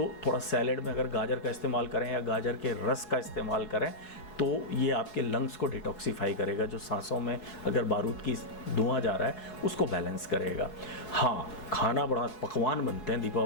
थोड़ा सैलेड में अगर गाजर का इस्तेमाल करें या गाजर के रस का इस्तेमाल करें तो ये आपके लंग्स को डिटॉक्सिफाई करेगा। जो सांसों में अगर बारूद की धुआं जा रहा है उसको बैलेंस करेगा। हाँ, खाना बड़ा पकवान बनते हैं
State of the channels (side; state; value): right; late; 4.7 ms